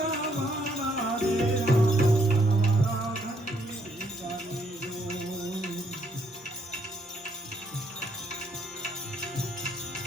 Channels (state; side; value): normal; both; correlation 0.70